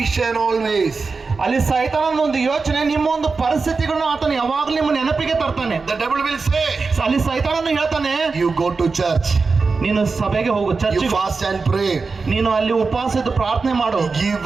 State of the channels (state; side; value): quieter; left; 4.4 dB